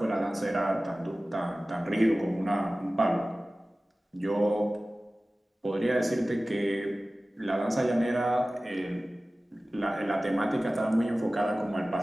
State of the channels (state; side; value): normal; both; correlation 0.97